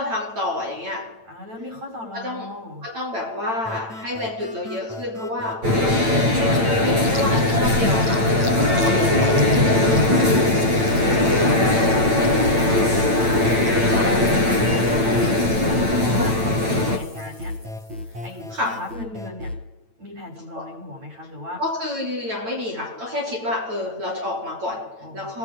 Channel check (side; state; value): left; late; 8.9 ms